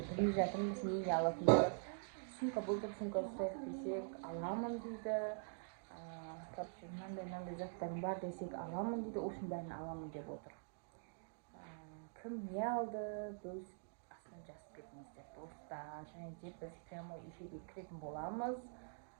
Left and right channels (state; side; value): silent; left; digital silence